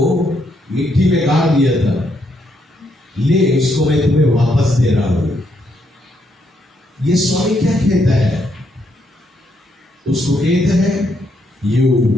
मिट्टी में गाड़ दिया था, ले इसको मैं तुम्हें वापस दे रहा हूं। ये स्वामी क्या कहता है, उसको कहता है, you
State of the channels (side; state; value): both; normal; correlation 0.76